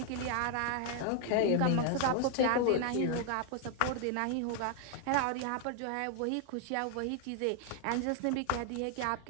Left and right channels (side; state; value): both; different; correlation 0.00